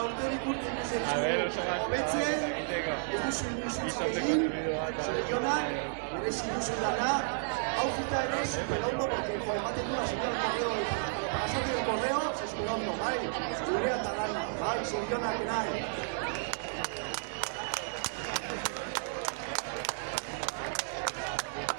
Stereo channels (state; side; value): silent; left; digital silence